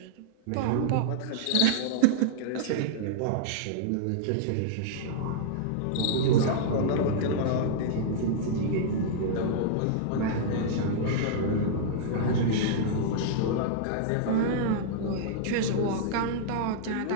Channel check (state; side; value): different; both; correlation -0.01